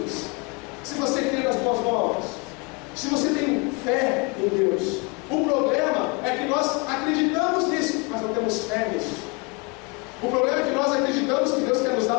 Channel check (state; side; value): quieter; right; 30.0 dB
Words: se você crê nas boas novas, se você tem fé em Deus. O problema é que nós acreditamos nisso, mas não temos fé nisso. O problema é que nós acreditamos que Deus quer nos dar